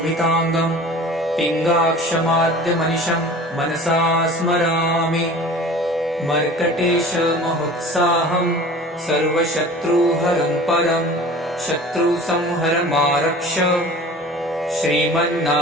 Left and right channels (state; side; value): normal; both; correlation 0.41